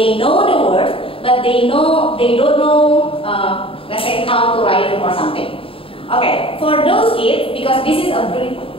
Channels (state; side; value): late; right; 0.27 ms